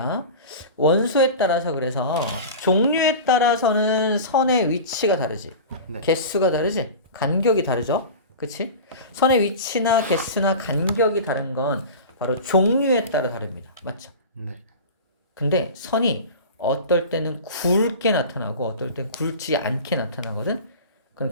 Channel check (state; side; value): inverted; both; correlation -0.32